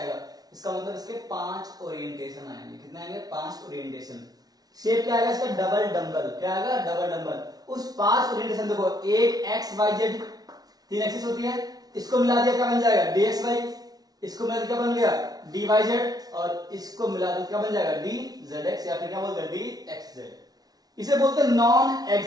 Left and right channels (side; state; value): left; late; 0.19 ms